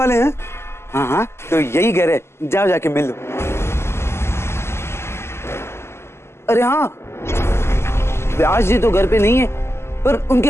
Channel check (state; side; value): late; right; 0.12 ms